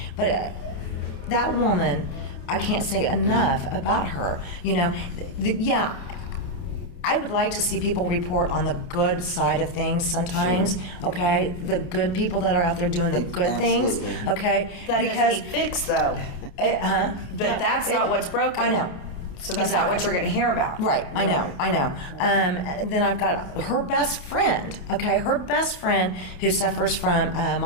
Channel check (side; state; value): right; late; 28 ms